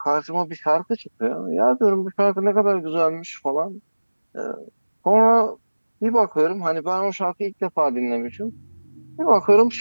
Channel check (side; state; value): both; inverted; correlation -1.00